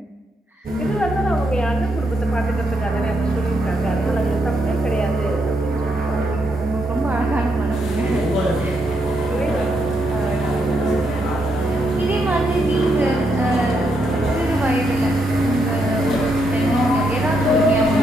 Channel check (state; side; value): normal; both; correlation 0.79